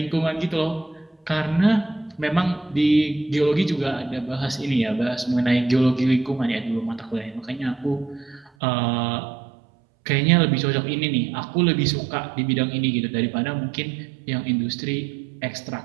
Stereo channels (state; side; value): drops out; left; at 8.5 s